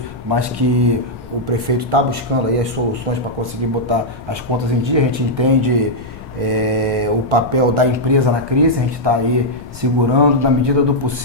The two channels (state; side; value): noise; left; rumble, 18 dB below the sound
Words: mas que o prefeito está buscando aí as soluções para conseguir botar as contas em dia. A gente entende o papel da empresa na crise, a gente está aí segurando, na medida do